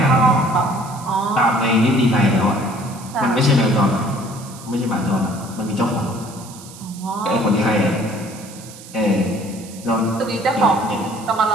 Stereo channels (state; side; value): noise; right; hiss, 18 dB below the sound